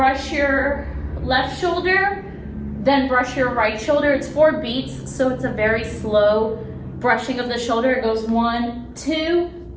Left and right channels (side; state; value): both; identical; correlation 1.00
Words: your left shoulder, then brush your right shoulder. It's 4 beats, so it's a very slow brushing of the shoulder. It goes 1, 2,